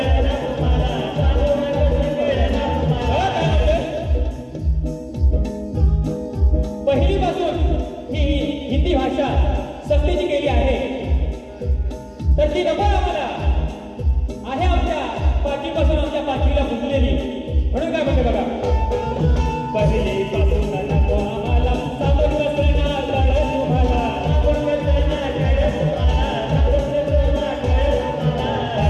तुम्हाला, सांगून कसं कळलं तुम्हाला. पहिली पासून ही हिंदी भाषा सक्तीची केली आहे, तर ती नको आम्हाला आहे आमच्या पाठीपासून, आमच्या पाठीला फुटलेली. म्हणून काय म्हणते बघा, पहिली पासून नको आम्हाला सांगून कसं ना कळलं तुम्हाला,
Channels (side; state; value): both; identical; correlation 1.00